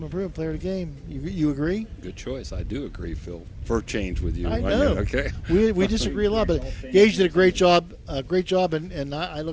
Improvement Player of the Game. You agree? Good choice. I do agree, Phil. For change with you. I know. Okay. We disagree a lot, but Gage did a great job. And I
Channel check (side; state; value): both; identical; correlation 1.00